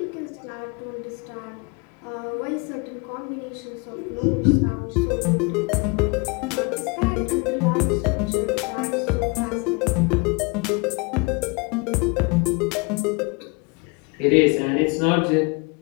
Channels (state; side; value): quieter; right; 29.9 dB